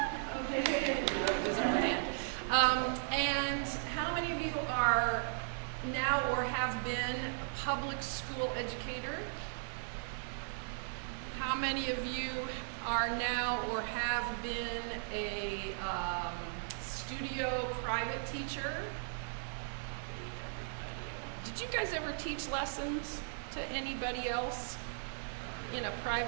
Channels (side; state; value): left; silent; digital silence